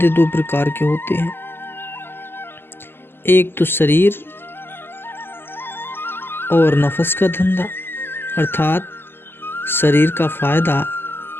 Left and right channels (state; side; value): late; right; 0.11 ms